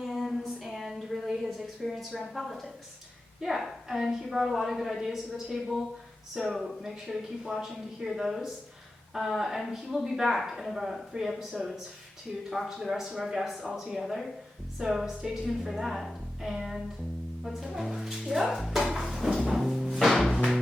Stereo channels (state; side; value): normal; both; correlation 0.93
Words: and really his experience around politics. Yeah, and he brought a lot of good ideas to the table, so make sure to keep watching to hear those. And he will be back in about 3 episodes to talk to the rest of our guests all together. So stay tuned for that. And let's head on. Yep.